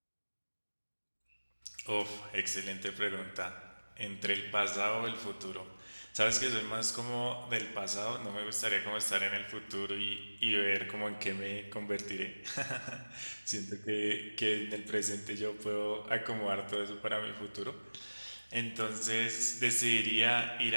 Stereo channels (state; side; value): inverted; both; correlation -1.00